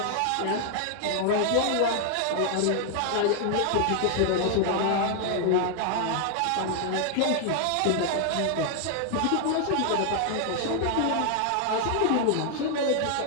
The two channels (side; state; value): both; different; correlation 0.00